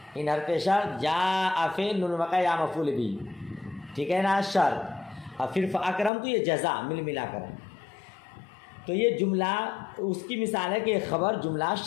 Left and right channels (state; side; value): drops out; right; at 6.1 s